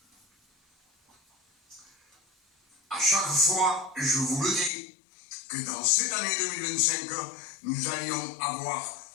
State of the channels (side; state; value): right; drops out; at 4.7 s